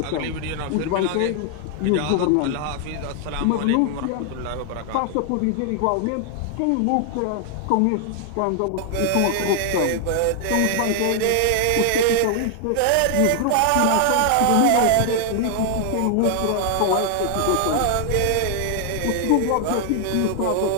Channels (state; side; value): different; both; correlation 0.00